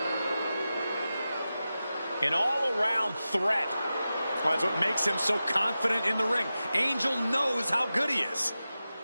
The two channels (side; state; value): both; inverted; correlation -0.93